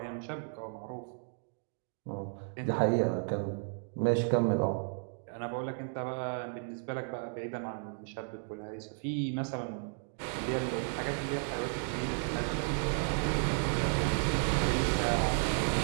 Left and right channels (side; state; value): left; silent; 55 dB below the other